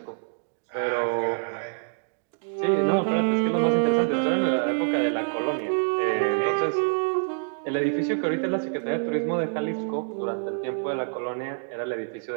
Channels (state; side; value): silent; left; digital silence